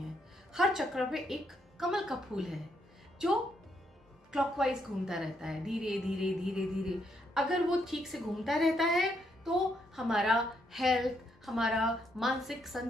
हर चक्र पे एक कमल का फूल है जो क्लॉकवाइज घूमता रहता है, धीरे धीरे धीरे धीरे। अगर वो ठीक से घूमता रहता है तो हमारा हेल्थ, हमारा मानसिक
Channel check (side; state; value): both; normal; correlation 0.75